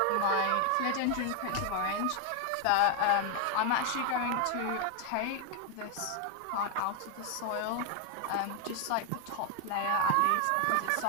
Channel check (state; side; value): different; both; correlation 0.01